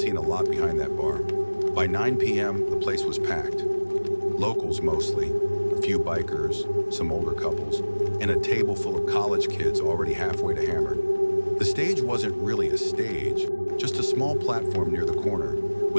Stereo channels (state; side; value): inverted; both; correlation -1.00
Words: a lot behind that bar. By 9 p.m., the place was packed. Locals mostly, a few bikers, some older couples, and a table full of college kids already halfway to Hammered. The stage wasn't really a stage, just a small platform near the corner